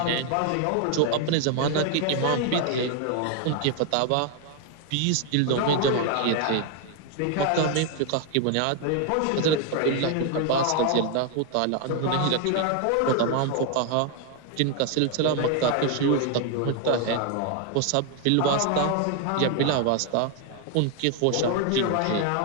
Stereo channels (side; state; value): both; different; correlation 0.00